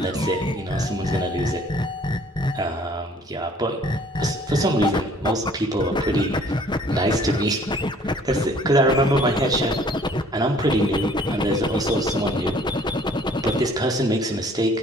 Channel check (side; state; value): both; normal; correlation 0.56